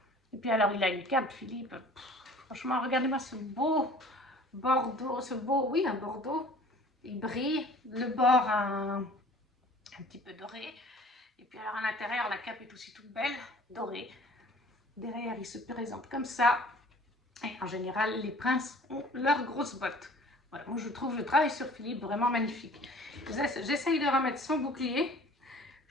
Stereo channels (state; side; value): normal; both; correlation 0.49